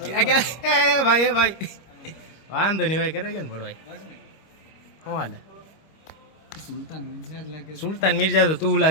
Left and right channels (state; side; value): late; right; 25 ms